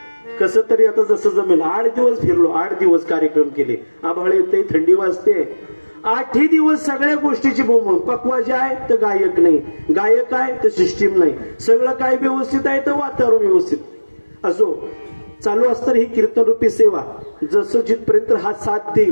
कसं तरी आता जसं जमेल. 8 दिवस फिरलो, 8 दिवस कार्यक्रम केले. आभाळ येते, थंडी वाजते, 8ही दिवस सगळ्या गोष्टीची बोंब. पक्वाजी आहे तर गायक नाही, गायक आहे तर सिस्टीम नाही, सगळं काय व्यवस्थित आहे तर वातावरण व्यवस्थित. असो चालू असतं ही कीर्तन रूपी सेवा. जसं जिथपर्यंत हा साथ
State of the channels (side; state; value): both; inverted; correlation -1.00